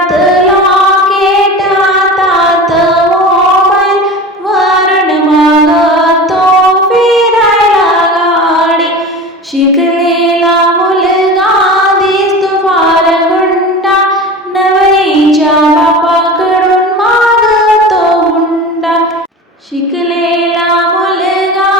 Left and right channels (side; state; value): both; normal; correlation 0.32